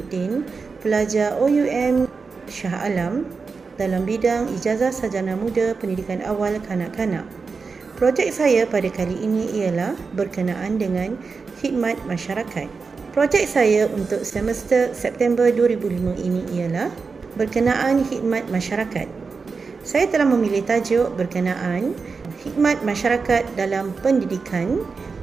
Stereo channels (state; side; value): quieter; left; 4.8 dB